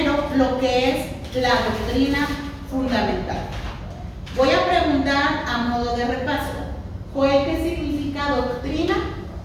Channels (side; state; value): both; identical; correlation 1.00